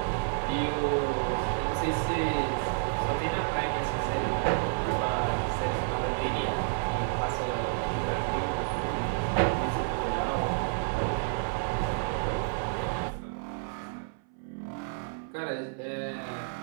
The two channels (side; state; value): left; silent; 58 dB below the other